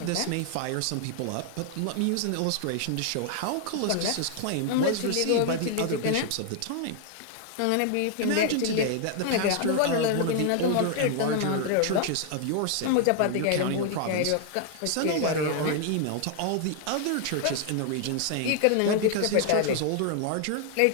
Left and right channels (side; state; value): both; different; correlation 0.00